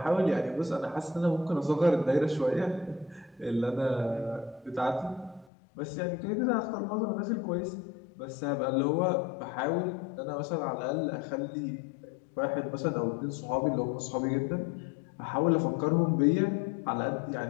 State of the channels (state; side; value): drops out; right; at 5.5 s